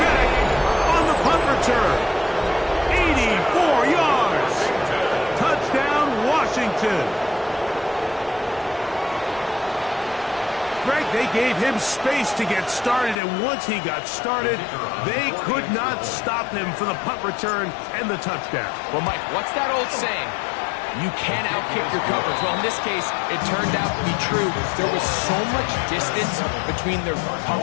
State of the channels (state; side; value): drops out; right; at 13.2 s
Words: on the punt return. 84 yards. Touchdown, Washington. Greg, they gave him space to get started, and once he got started, they could not stop him for the punt return and the touchdown. Well, Mike, what's that old saying? You can't outkick your coverage. Well, in this case, it turned out to be true. There was so much distance between the